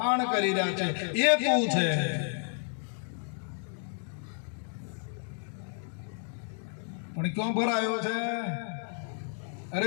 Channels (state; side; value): silent; right; 57 dB below the other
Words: કરી રહ્યા છે. એ તું છે. પણ ક્યાં ભરાયો છે? અરે